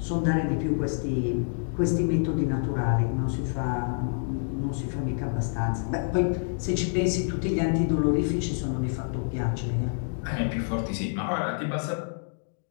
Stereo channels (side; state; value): right; silent; digital silence